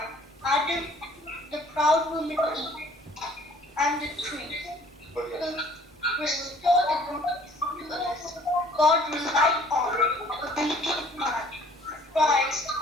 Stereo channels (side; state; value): both; normal; correlation 0.56